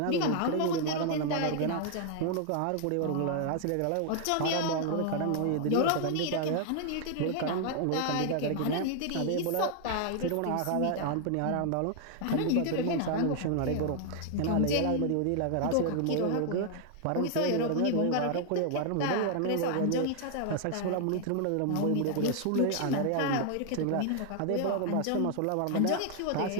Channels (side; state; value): both; different; correlation 0.00